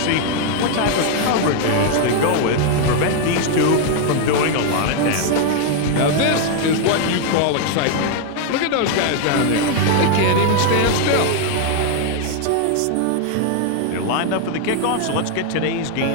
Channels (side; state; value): both; different; correlation 0.01